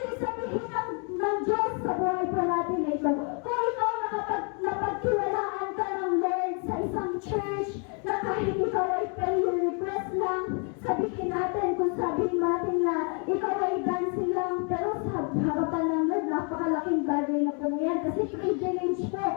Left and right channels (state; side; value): quieter; right; 38.5 dB